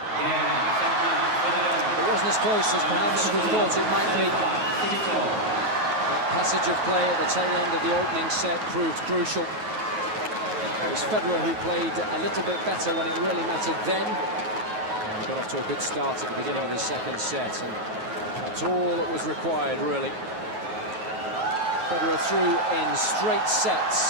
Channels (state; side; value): late; left; 9.3 ms